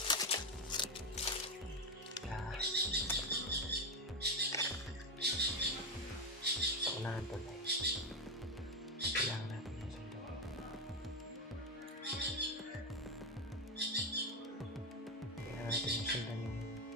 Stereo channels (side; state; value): both; normal; correlation 0.10